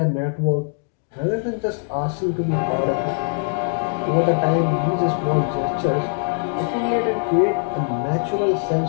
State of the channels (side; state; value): right; silent; digital silence